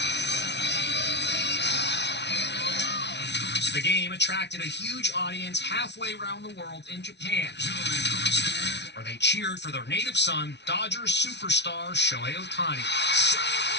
The game attracted a huge audience halfway around the world in Japan, where they cheered for their native son, Dodgers superstar Shohei Ohtani.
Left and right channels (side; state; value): right; late; 0.50 ms